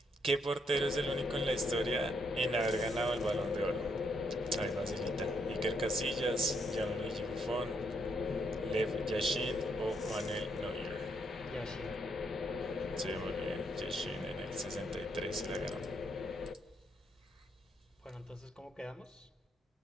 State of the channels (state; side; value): normal; both; correlation 0.75